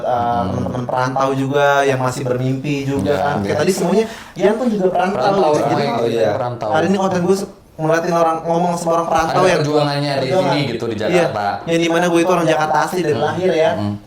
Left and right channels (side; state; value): both; identical; correlation 1.00